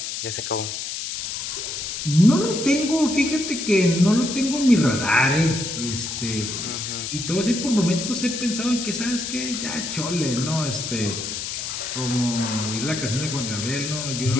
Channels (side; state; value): left; noise; hiss, 5 dB below the sound